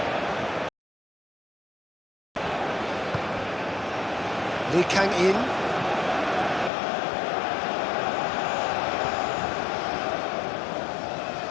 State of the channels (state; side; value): drops out; right; at 6.7 s